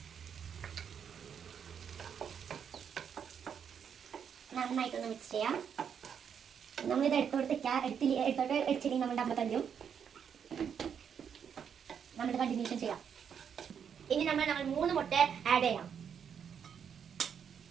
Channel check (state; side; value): quieter; left; 7.6 dB